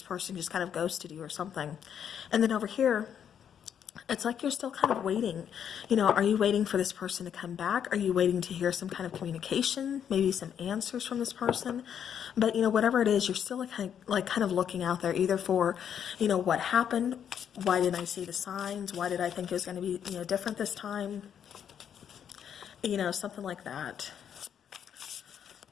person just kind of ghosted you or something. And then over here, it's like you're still kind of waiting. Are you waiting for this person to come back? Are you waiting to hear some kind of communication, maybe some answers from this person? But, whatever it is, you're still kind of looking out there either for, what happened? Why didn't I see the signs? Why did I think it was going to be, different this time? Something like that.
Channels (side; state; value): right; quieter; 8.6 dB